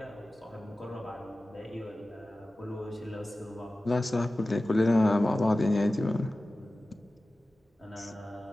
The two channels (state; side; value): normal; both; correlation 0.96